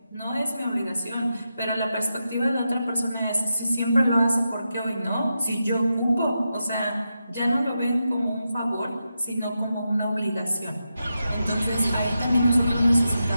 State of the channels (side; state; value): both; inverted; correlation -0.88